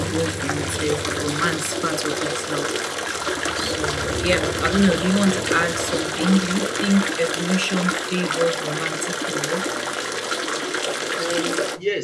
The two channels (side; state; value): both; identical; correlation 1.00